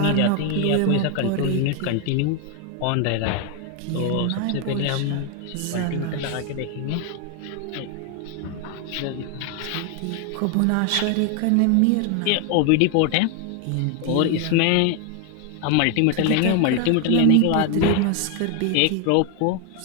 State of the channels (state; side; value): different; both; correlation 0.01